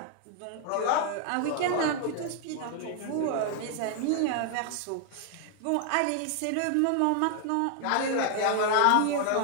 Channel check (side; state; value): both; different; correlation 0.00